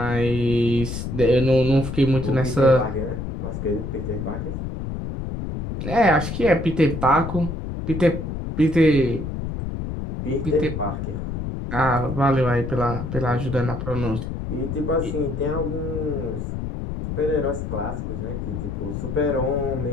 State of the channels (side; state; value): left; noise; rumble, 5 dB below the sound